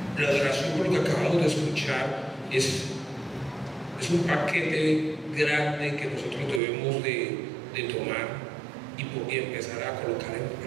La adoración, por lo que acabamos de escuchar, es un paquete grande que nosotros debemos de tomar y empezar a colocar en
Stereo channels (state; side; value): drops out; left; at 6.6 s